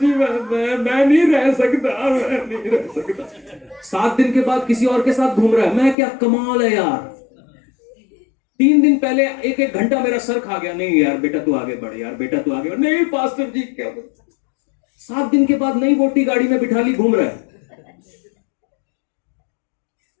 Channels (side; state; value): right; drops out; at 6.0 s